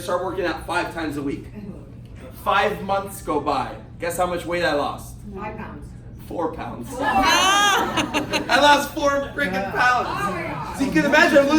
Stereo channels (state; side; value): identical; both; correlation 1.00